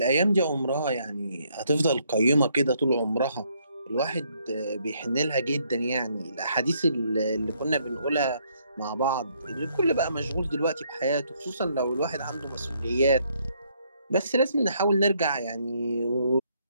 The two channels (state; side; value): inverted; both; correlation -0.70